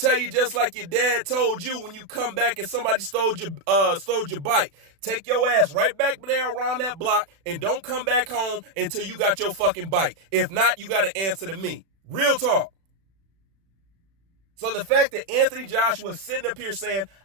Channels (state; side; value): late; left; 36 ms